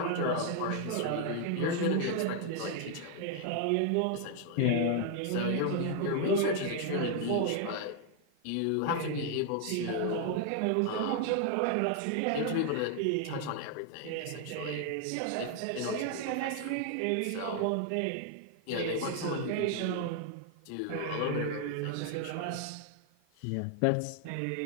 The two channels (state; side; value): different; both; correlation 0.00